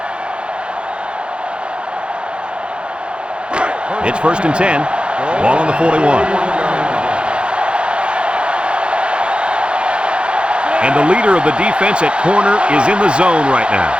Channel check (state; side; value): late; left; 0.056 ms